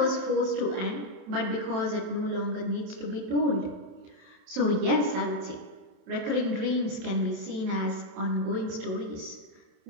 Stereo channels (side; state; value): left; late; 27 ms